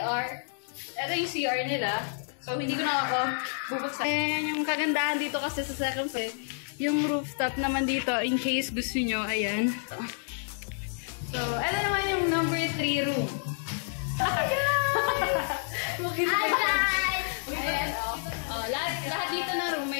Ito yung CR nila. So, hindi ko na ako bubuksan. Ayan, yung kagandahan dito kasi sa second floor. Yung rooftop naman dito, in case gusto nyo, ayan. So, ito naman yung number 3 room. Hi guys! Ayan, lahat dito na room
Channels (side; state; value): right; silent; 56 dB below the other